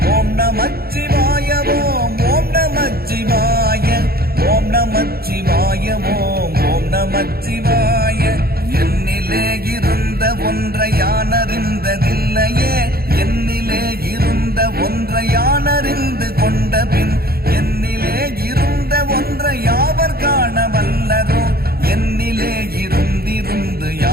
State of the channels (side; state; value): left; late; 0.45 ms